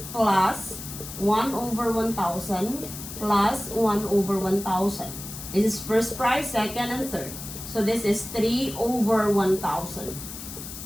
plus 1 over 1,000 plus 1 over 1,000. This is first prize, second, and third. So this is 3 over 1,000.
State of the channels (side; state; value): left; noise; hiss, 10 dB below the sound